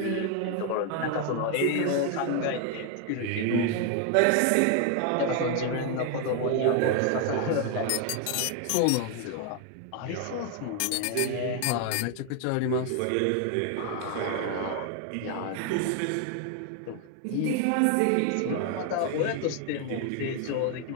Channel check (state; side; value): different; both; correlation 0.01